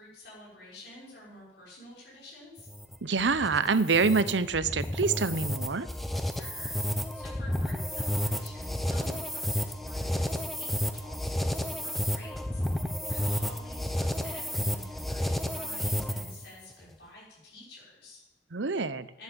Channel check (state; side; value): normal; both; correlation 0.57